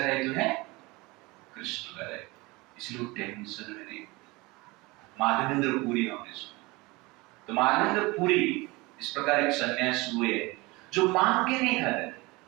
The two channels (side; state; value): left; quieter; 23.5 dB